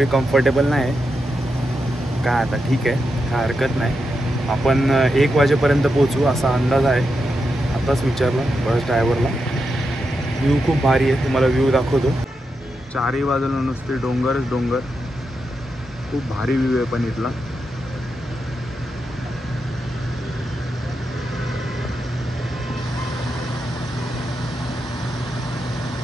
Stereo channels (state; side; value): normal; both; correlation 0.86